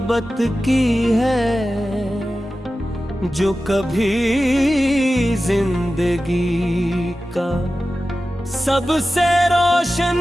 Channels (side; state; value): both; normal; correlation 0.94